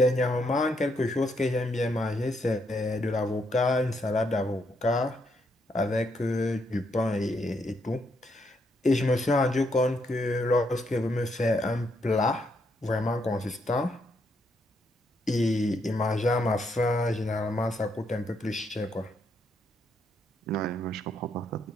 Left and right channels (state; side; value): normal; both; correlation 0.76